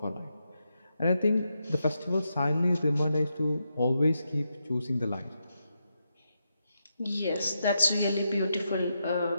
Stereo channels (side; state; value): both; inverted; correlation -0.85